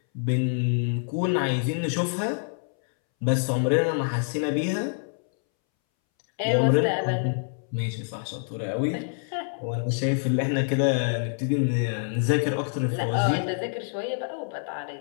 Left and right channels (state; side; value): silent; right; 61 dB below the other